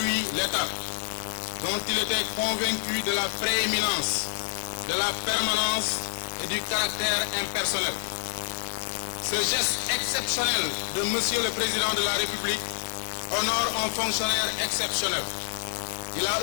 l'État, dont il était convaincu de la prééminence, de la permanence et du caractère impersonnel. Ce geste exceptionnel de Monsieur le Président de la République honore un fonctionnaire exceptionnel. Il a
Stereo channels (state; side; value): silent; right; digital silence